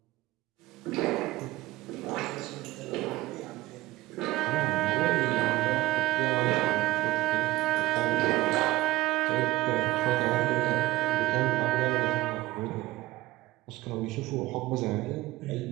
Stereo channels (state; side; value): quieter; left; 17.6 dB